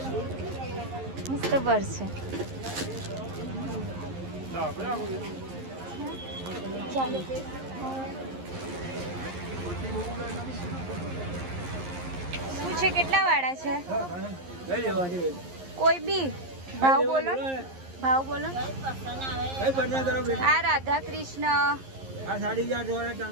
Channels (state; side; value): late; left; 11 ms